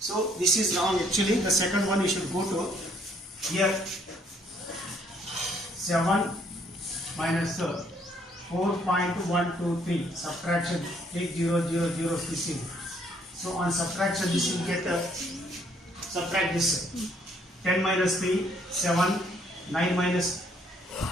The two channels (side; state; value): both; normal; correlation 0.66